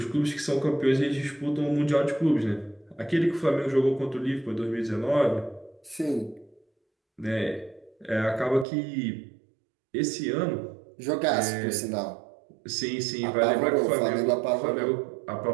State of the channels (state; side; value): drops out; left; at 8.7 s